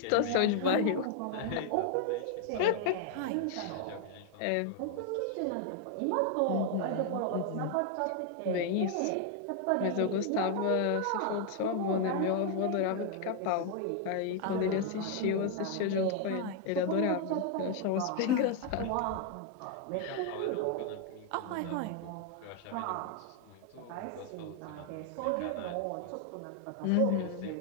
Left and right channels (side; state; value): both; different; correlation 0.00